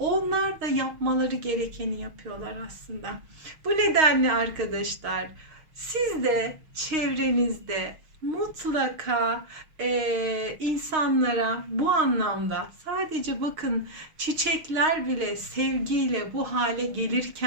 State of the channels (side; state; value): left; late; 6.4 ms